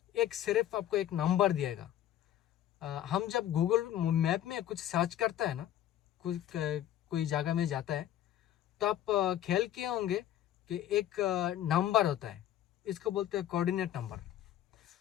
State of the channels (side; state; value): right; quieter; 11.8 dB